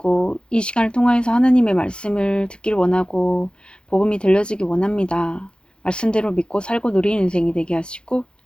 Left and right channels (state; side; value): late; right; 0.052 ms